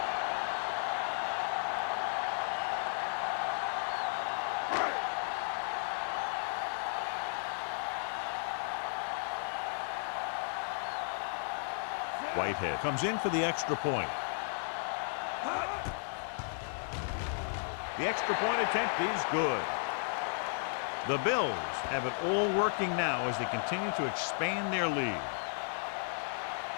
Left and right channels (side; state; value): right; silent; digital silence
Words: Whitehead comes in for the extra point. The extra point attempt is good. The Bills have it all working now as they continue to expand their lead.